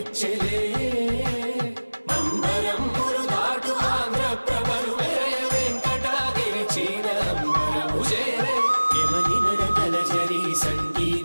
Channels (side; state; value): both; inverted; correlation -1.00